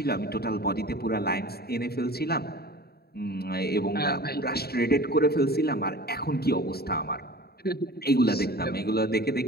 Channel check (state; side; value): late; right; 0.46 ms